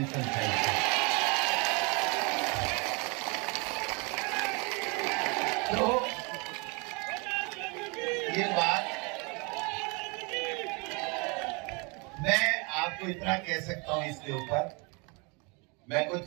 चाहिए। तो ये बात मैं आपको इतना कह सकता हूं इसके ऊपर, मैं कोई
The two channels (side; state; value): left; quieter; 31.0 dB